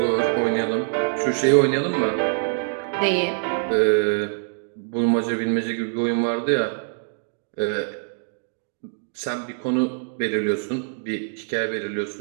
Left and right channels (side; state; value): left; silent; digital silence